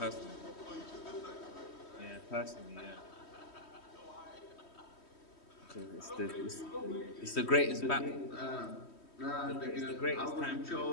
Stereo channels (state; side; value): late; right; 3.1 ms